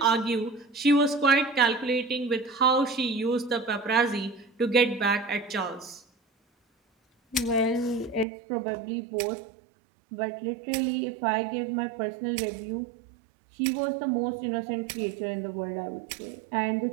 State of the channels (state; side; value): drops out; left; at 8.2 s